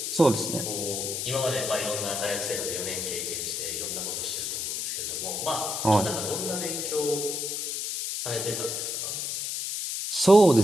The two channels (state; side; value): noise; left; hiss, 2 dB below the sound